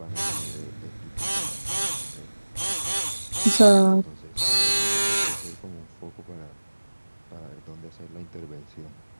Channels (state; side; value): inverted; both; correlation -1.00